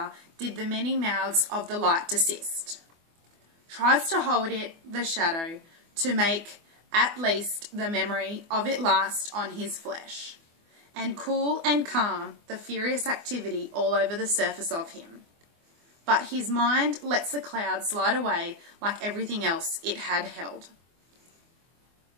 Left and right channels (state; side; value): late; left; 24 ms